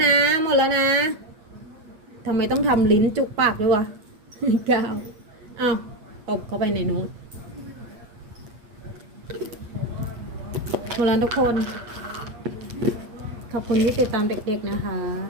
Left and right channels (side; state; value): left; late; 8.4 ms